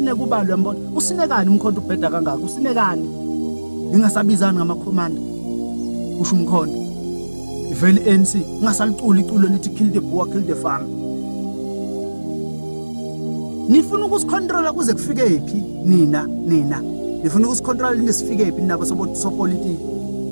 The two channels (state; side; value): inverted; both; correlation -1.00